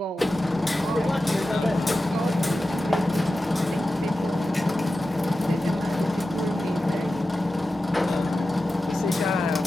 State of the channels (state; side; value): normal; both; correlation 0.93